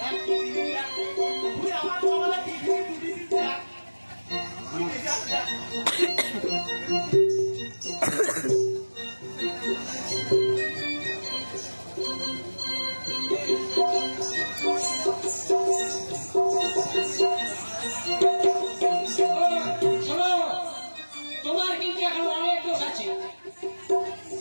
তুই আমার বাবারা টিভি দুটি দেখ। তুই দেখ দেখ। শোনো, তোমার কিন্তু এখন অনেক দোষ আছে,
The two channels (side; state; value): both; inverted; correlation -1.00